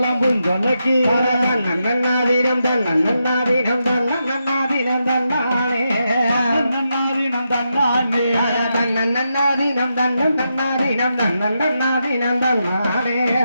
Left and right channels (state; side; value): inverted; both; correlation -0.85